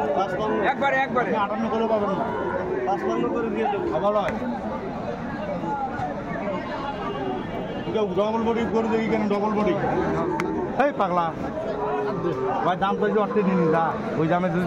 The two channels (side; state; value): both; identical; correlation 1.00